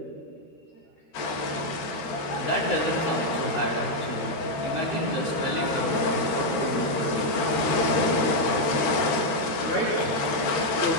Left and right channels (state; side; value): late; right; 13 ms